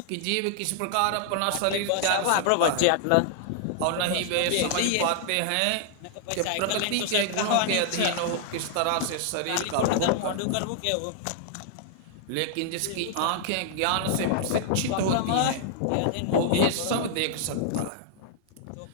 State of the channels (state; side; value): different; both; correlation -0.01